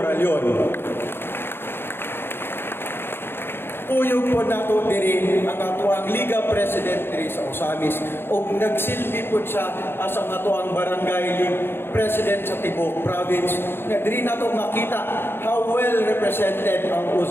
Puyog po nato diri ang ato ang Liga President diri sa Ozamiz ug nagsilbi po siya as ang ato ang Barangay League President sa Tibok Province. Diri nato makita how well represented ang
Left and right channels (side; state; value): right; late; 0.11 ms